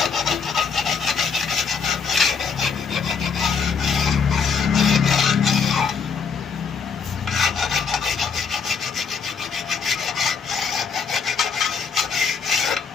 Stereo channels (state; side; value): quieter; right; 5.8 dB